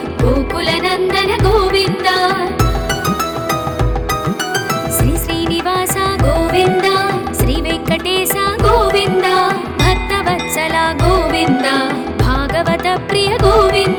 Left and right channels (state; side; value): identical; both; correlation 1.00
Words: गोकुलनन्दन गोविन्द श्री श्रीनिवास गोविन्द श्रीवेङ्कटेश गोविन्द भक्तवत्सल गोविन्द भागवत प्रिय